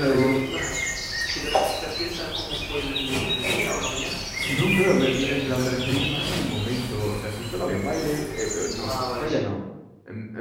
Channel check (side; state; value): both; identical; correlation 1.00